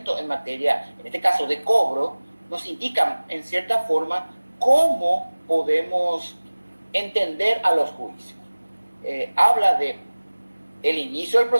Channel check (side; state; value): both; inverted; correlation -1.00